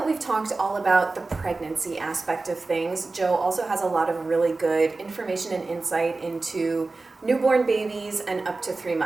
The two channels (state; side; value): quieter; left; 3.5 dB